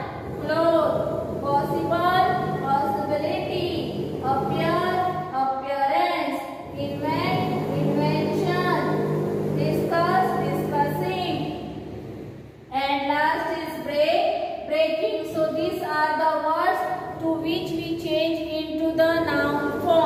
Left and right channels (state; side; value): identical; both; correlation 1.00